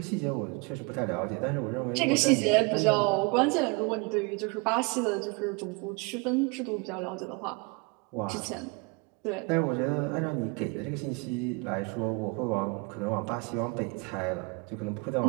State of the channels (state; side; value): quieter; left; 29.4 dB